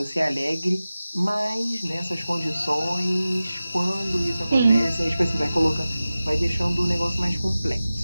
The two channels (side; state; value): both; inverted; correlation -0.96